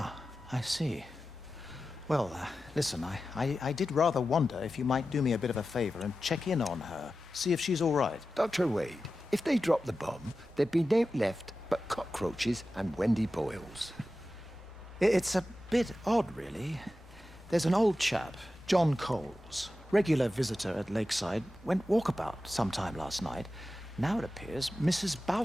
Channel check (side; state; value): both; normal; correlation 0.93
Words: I see. Well, listen, I did rather wonder if you might do me a bit of a favor and check in on her, see if she's all right. Dr. Wade, if they dropped the bomb, there'd be no left but cockroaches and Wendy Boyles. It's a bit odd, really. There's an old chap, John Coles, regular visitor at Lakeside, went walkabout sometime last night. Now it appears Mrs.